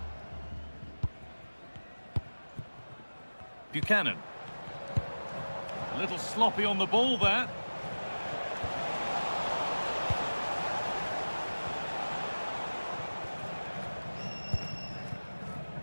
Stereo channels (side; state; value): both; inverted; correlation -1.00